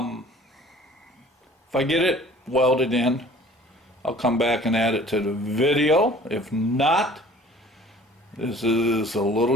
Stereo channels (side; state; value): both; normal; correlation 0.50